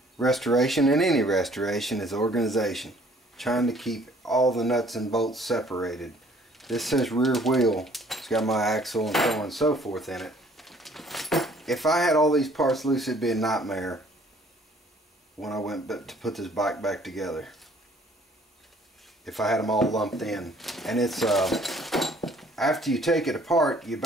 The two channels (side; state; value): both; normal; correlation 0.58